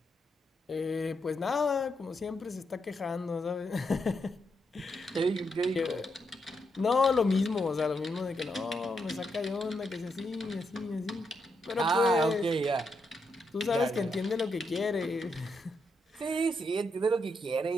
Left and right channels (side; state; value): both; normal; correlation 0.81